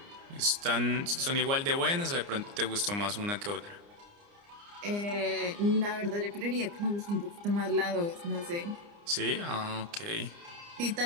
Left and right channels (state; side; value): late; left; 29 ms